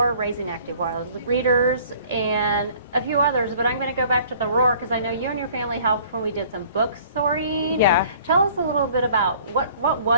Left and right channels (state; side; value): inverted; both; correlation -0.54